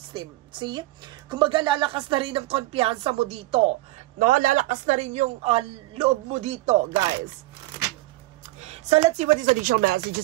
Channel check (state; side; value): quieter; left; 19.0 dB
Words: See? Kumbaga, lalakas na rin ang kumpiyansa mo dito. No? Lalakas na rin yung loob mo dito, guys. So, let's see what is additional